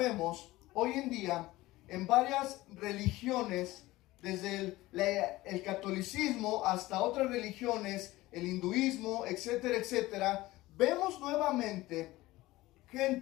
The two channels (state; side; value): quieter; right; 18.3 dB